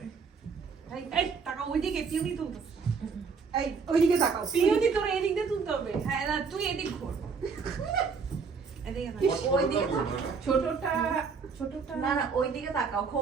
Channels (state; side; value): quieter; left; 5.4 dB